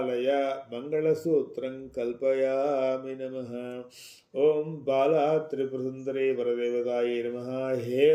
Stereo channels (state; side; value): identical; both; correlation 1.00